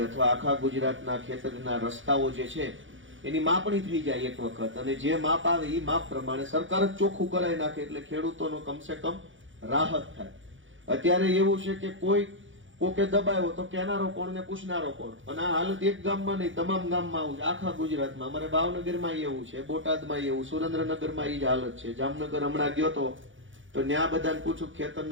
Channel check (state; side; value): late; left; 0.56 ms